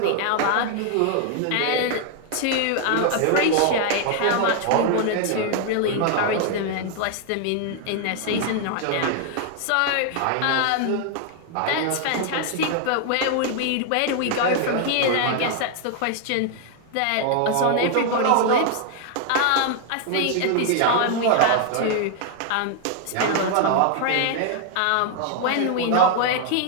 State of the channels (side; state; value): both; different; correlation 0.00